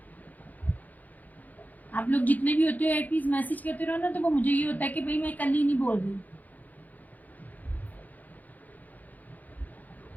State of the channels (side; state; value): right; late; 0.081 ms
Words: आप लोग जितने भी होते हो एटलीस्ट मैसेज करते रहो ना, तो वो मुझे ये होता है कि भाई मैं कल ही नहीं बोल रही।